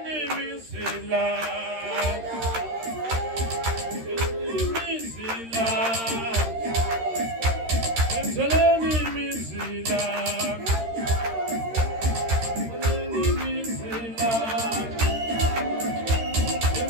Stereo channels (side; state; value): left; late; 13 ms